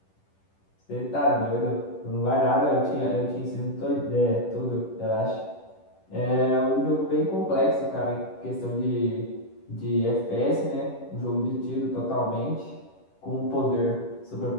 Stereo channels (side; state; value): right; late; 10 ms